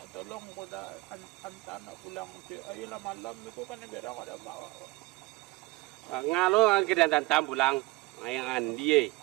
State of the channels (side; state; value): left; quieter; 22.4 dB